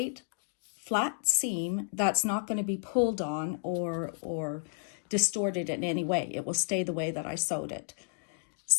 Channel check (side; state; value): right; silent; digital silence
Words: flat seam that's not going to be pulled on or distorted in any way. It will stay the way that I sewed it.